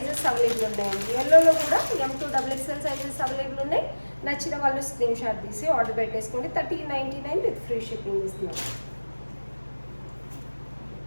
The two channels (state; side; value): inverted; both; correlation -1.00